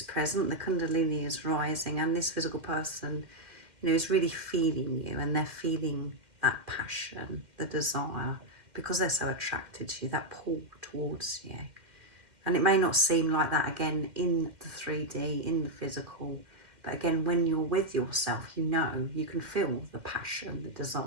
present, the Kundalini is rising, and this physical person, is really feeling you, and they're feeling that passion, the desire, because they're so attracted to you, that pull towards you. And it may not seem like that again in the 3D, in the physical, but again, when you're with yourself, you can feel the passion, the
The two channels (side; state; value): left; late; 2.1 ms